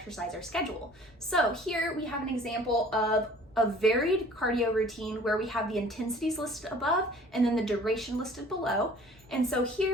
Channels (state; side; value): normal; both; correlation 0.50